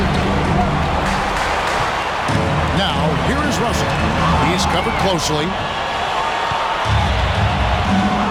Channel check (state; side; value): identical; both; correlation 1.00